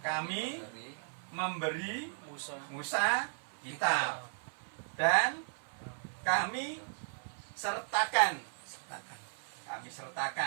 memberi Musa kitab, dan kami sertakan,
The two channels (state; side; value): silent; left; 54 dB below the other